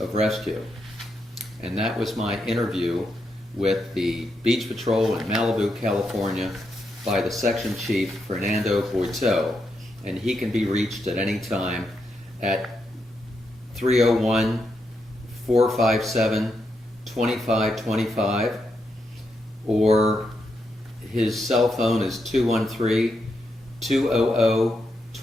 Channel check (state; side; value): normal; both; correlation 0.82